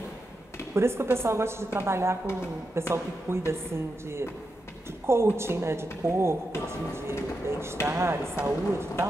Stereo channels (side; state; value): both; normal; correlation 0.87